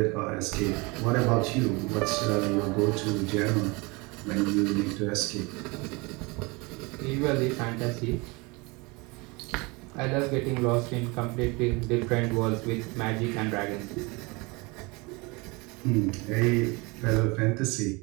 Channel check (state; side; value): quieter; left; 26.6 dB